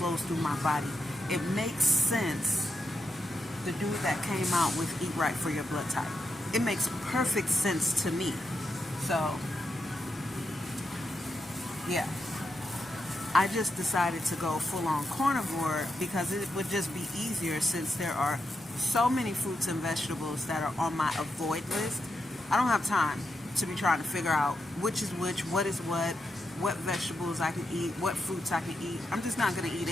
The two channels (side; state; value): both; normal; correlation 0.84